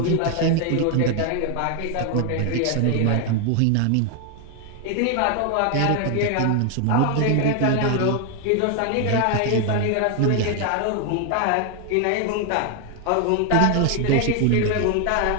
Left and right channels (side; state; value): both; different; correlation 0.00